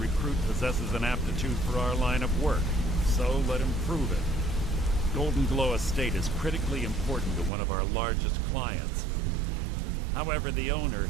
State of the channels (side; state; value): left; drops out; at 7.5 s